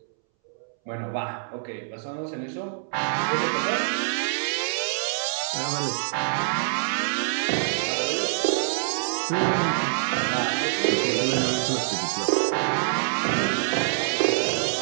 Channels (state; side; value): silent; left; 61 dB below the other